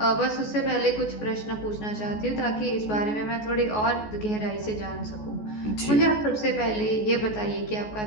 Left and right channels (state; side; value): late; right; 14 ms